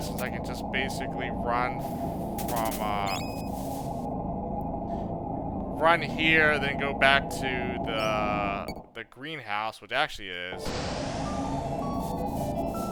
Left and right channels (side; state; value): both; identical; correlation 1.00